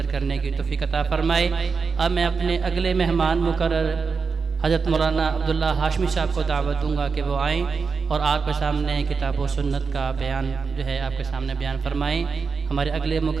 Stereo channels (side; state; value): left; quieter; 5.1 dB